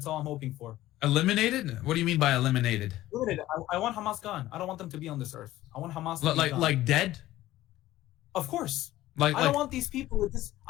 all I'm hoping for. Eliminated? What do you mean by eliminated? Eliminated. I want Hamas gone. I don't want them to be on this earth. I want Hamas to be gone. Like dead? Of course. I don't want these people with this.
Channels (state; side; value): quieter; right; 15.4 dB